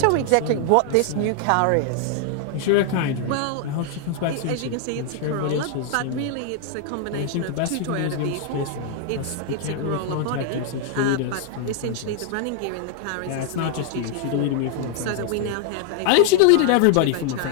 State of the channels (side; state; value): both; different; correlation 0.00